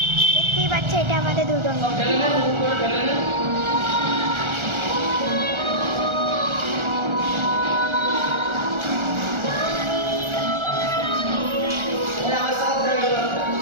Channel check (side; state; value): left; late; 1.4 ms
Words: দেখতেই পাচ্ছে এটা আমাদের দুর্গা মা।